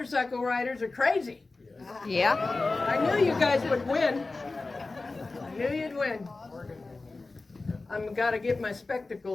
riders are crazy? Yeah. I knew you guys would win. I knew you'd win. I've got to get my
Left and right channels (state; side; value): quieter; right; 3.5 dB